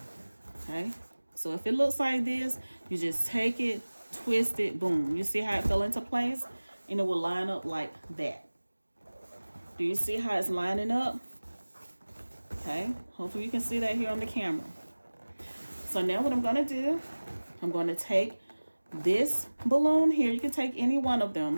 okay? So if it looks like this, you just take it, twist it, boom. You see how it fell into place? And it will line up like that. Do you see how it's lining up? Okay, hopefully you can see that here on the camera. So now what I'm gonna do, I'm gonna take this balloon here. You can take any one of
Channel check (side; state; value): both; inverted; correlation -1.00